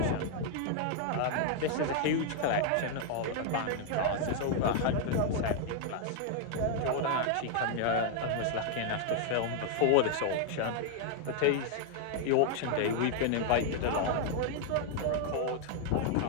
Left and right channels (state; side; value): different; both; correlation 0.00